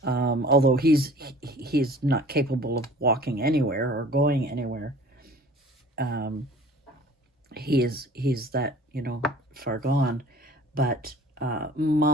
Although he's not capable of walking anywhere or going anywhere. He's that, you know, far gone. But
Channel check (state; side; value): normal; both; correlation 0.47